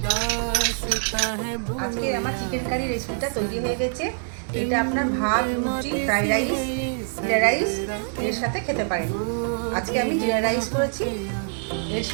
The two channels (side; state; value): left; silent; 62 dB below the other